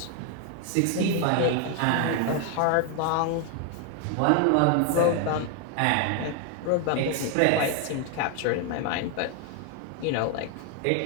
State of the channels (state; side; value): different; both; correlation 0.01